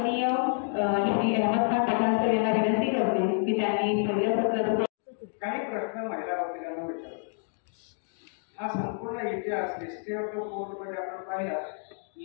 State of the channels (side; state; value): right; silent; 59 dB below the other